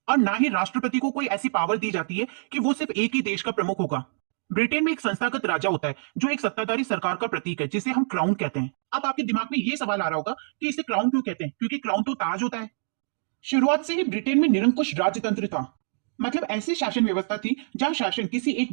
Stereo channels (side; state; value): left; silent; digital silence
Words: और ना ही राष्ट्रपति को कोई ऐसी पावर दी जाती है कि वो सिर्फ एक ही देश का प्रमुख होगा। ब्रिटेन में एक संस्थागत राजा होता है जो एक सत्ताधारी सरकार का प्रतीक है, जिसे हम क्राउन कहते हैं। अब आपके दिमाग में ये सवाल आ रहा होगा कि इसे क्राउन क्यों कहते हैं, क्योंकि क्राउन तो ताज होता है। शुरुआत से ही ब्रिटेन में निरंकुश राजतंत्र था। मतलब ऐसी शासन व्यवस्था थी जहां शासन किसी एक